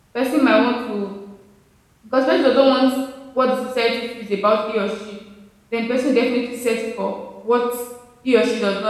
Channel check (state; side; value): identical; both; correlation 1.00